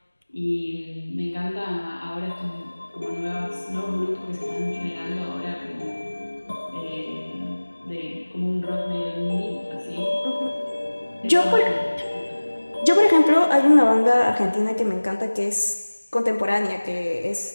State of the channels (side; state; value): both; inverted; correlation -1.00